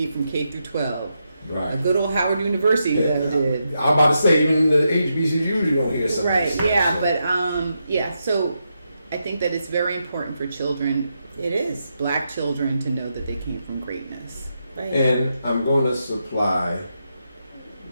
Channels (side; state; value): both; inverted; correlation -0.84